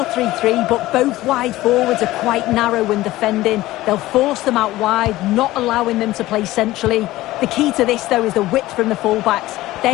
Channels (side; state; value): right; quieter; 17.0 dB